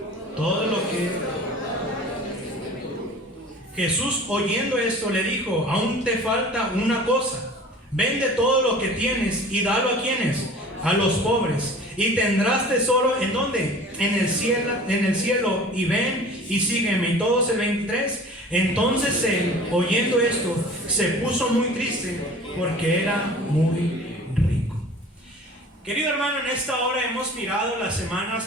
Todo lo que... Jesús, oyendo esto, le dijo: aún te falta una cosa. Vende todo lo que tienes y dalo a quienes, a los pobres, y tendrás tesoro ¿en dónde? En el cielo, y ven y sígueme. Y todos el 23. Entonces él, oyendo esto, se puso muy triste porque era muy rico. Querido hermano, en esta hora hemos mirado las semanas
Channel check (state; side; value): normal; both; correlation 0.43